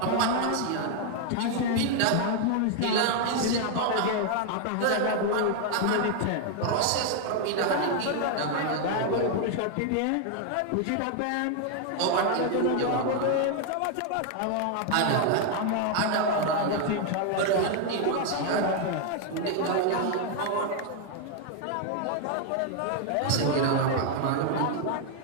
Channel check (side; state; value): both; different; correlation 0.00